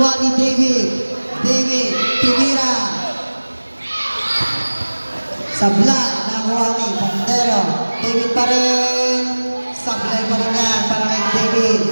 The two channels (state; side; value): inverted; both; correlation -1.00